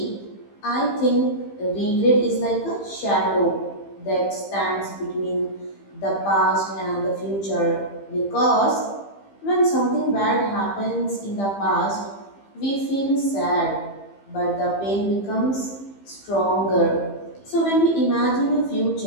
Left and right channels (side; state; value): right; late; 15 ms